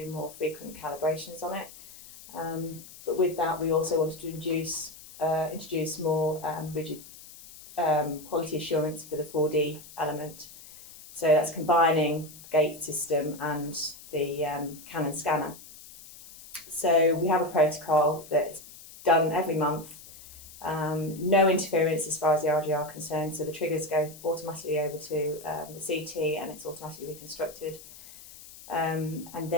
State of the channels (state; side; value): noise; left; hiss, 18 dB below the sound